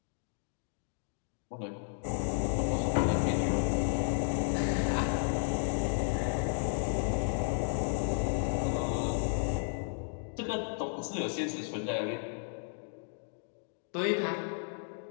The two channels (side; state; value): right; silent; digital silence